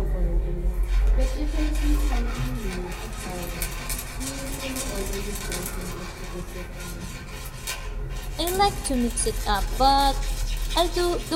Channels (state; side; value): identical; both; correlation 1.00